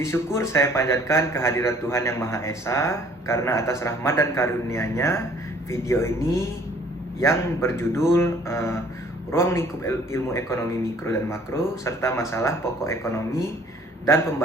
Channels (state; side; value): normal; both; correlation 0.56